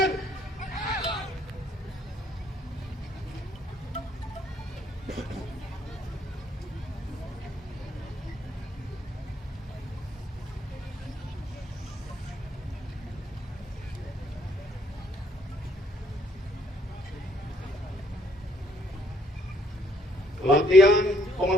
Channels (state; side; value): normal; both; correlation 0.67